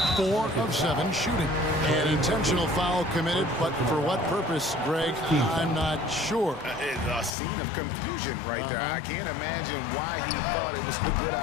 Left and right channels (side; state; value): right; drops out; at 7.3 s